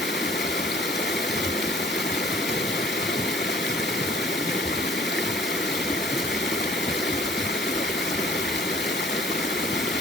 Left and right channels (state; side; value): normal; both; correlation 0.55